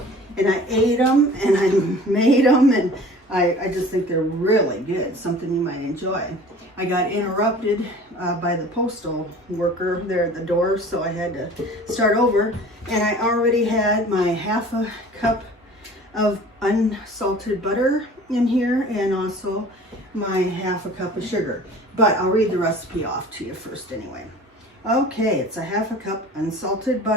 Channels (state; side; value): normal; both; correlation 0.45